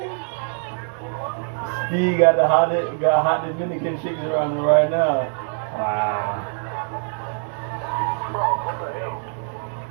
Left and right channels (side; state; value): left; silent; 63 dB below the other